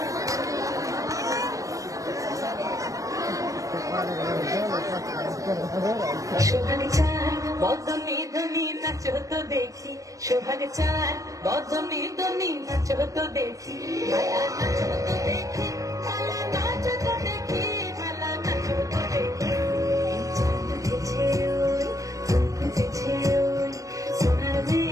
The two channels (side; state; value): left; late; 0.16 ms